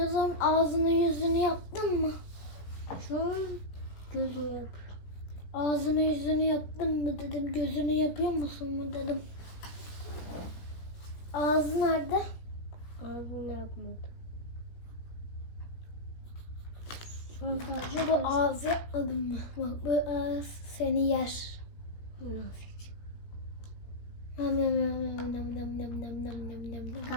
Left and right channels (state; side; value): late; right; 17 ms